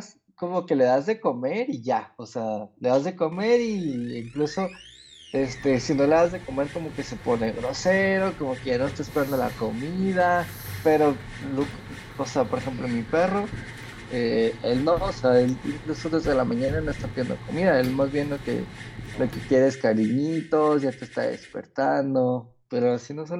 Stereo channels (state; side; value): identical; both; correlation 1.00